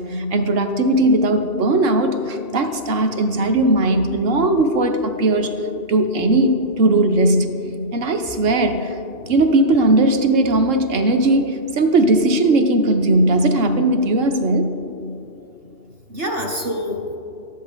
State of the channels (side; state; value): left; late; 2.8 ms